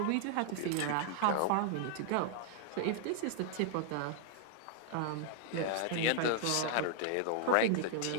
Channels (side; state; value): both; different; correlation -0.01